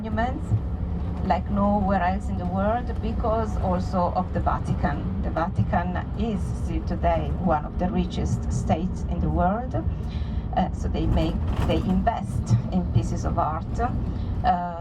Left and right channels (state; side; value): identical; both; correlation 1.00